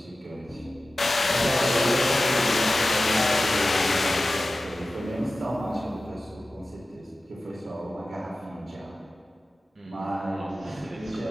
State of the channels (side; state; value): both; normal; correlation 0.96